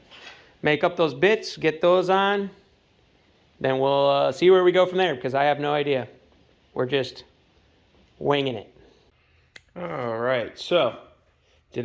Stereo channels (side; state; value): both; identical; correlation 1.00